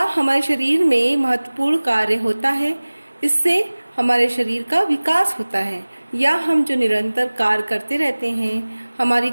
हमारे शरीर में महत्वपूर्ण कार्य होता है। इससे हमारे शरीर का विकास होता है, या हम जो निरंतर कार्य करते रहते हैं, हमारी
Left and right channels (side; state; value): both; inverted; correlation -1.00